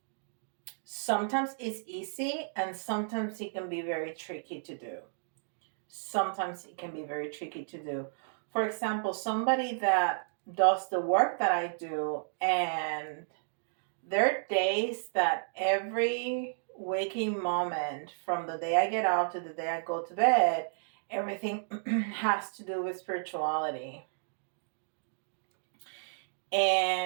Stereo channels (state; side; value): silent; left; digital silence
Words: sometimes is easy and sometimes it can be very tricky to do. Sometimes it can be very tricky to do. For example, somebody that does the work that I do, and there are days that every waking moment from the day I get out to the day I go to bed, everything has to do with spirituality.